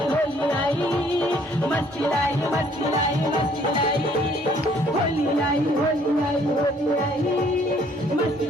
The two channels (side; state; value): both; normal; correlation 0.61